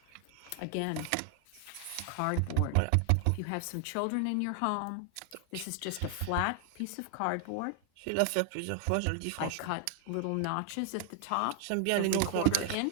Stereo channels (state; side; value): different; both; correlation 0.00